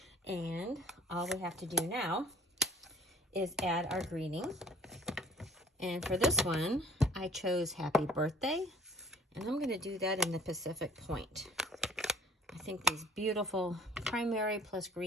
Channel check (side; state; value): both; normal; correlation 0.53